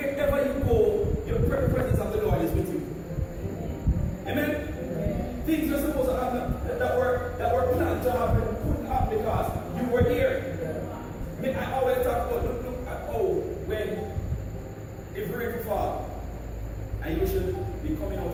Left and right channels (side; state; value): both; identical; correlation 1.00